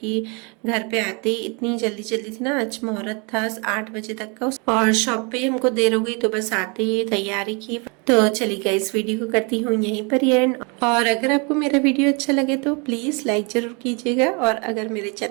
घर पे आते ही इतनी जल्दी थी ना, आज मुहूर्त था 8 बजे तक का, और शॉप पे हमको देर हो गई, तो बस आते ही तैयारी की। तो चलिए गाइस, वीडियो को करती हूँ यहीं पर ही एंड। और अगर आपको मेरा वीडियो अच्छा लगे तो प्लीज़ लाइक ज़रूर कीजिएगा, और अगर मेरे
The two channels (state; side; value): quieter; left; 32.2 dB